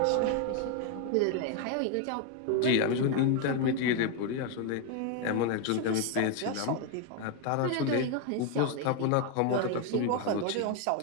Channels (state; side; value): different; both; correlation 0.01